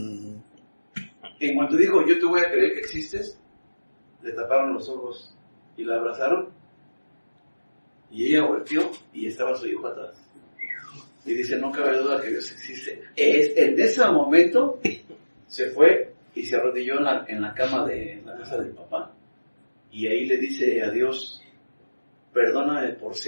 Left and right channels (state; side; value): inverted; both; correlation -1.00